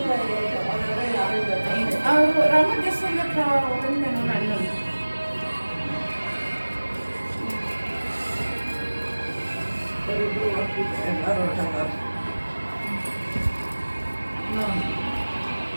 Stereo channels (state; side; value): inverted; both; correlation -1.00